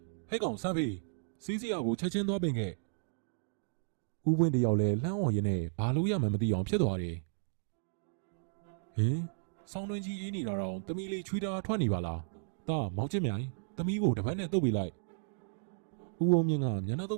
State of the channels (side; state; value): left; silent; digital silence